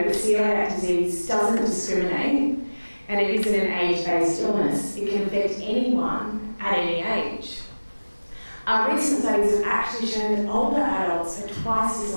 that celiac disease doesn't discriminate, and it isn't an age-based illness. It can affect anyone at any age. Our recent studies have actually shown that older adults are twice as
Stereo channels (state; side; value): inverted; both; correlation -1.00